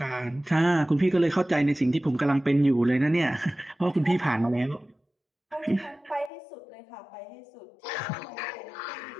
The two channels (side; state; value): right; drops out; at 6.3 s